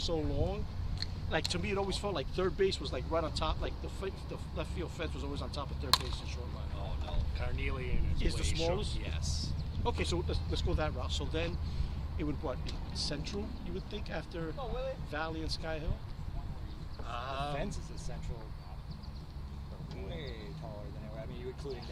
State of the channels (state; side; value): identical; both; correlation 1.00